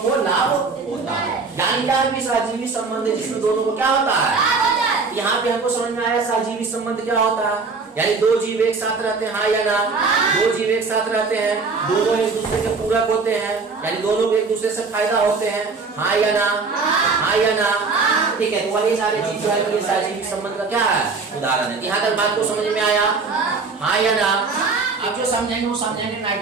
को लाभ होता है। यानी क्या है? सजीवी संबंध है जिसमें दोनों को क्या होता है? यहाँ पे हमको समझ में आया सजीवी संबंध क्या होता है। यानी दो जीव एक साथ रहते हैं, हाँ या ना? दो जीव एक साथ रहते हैं, दोनों एक दूसरे के पूरक होते हैं, यानी दोनों को एक दूसरे से फायदा होते हैं, हाँ या ना? हाँ या ना? ठीक है, तो वही सारे चीज जो है सजीवी संबंध का क्या है? उदाहरण है। यहाँ तक बात को समझ में आया? हाँ या ना? अब जो समझेंगे वो समझेंगे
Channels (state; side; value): quieter; left; 4.4 dB